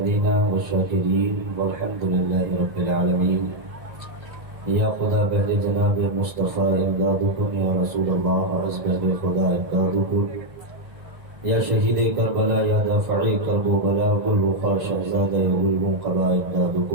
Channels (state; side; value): late; left; 1.9 ms